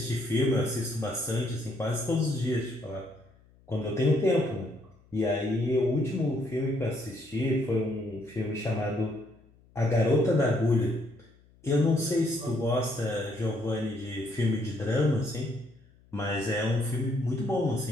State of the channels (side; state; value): left; noise; hum, 29 dB below the sound